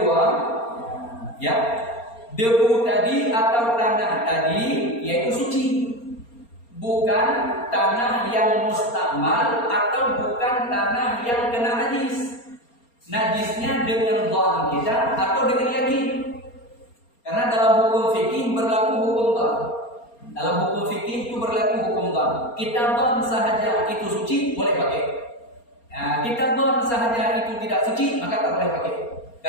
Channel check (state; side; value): late; right; 4.3 ms